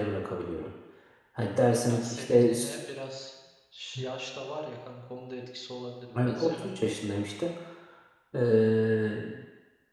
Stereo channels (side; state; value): both; identical; correlation 1.00